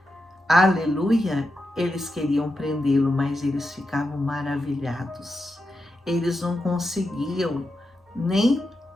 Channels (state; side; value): normal; both; correlation 0.87